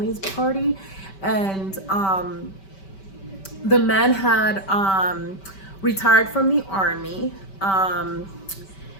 party, and the man had retired from the army,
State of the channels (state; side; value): late; right; 5.2 ms